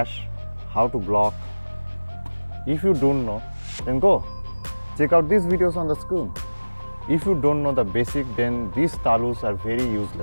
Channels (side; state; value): both; inverted; correlation -1.00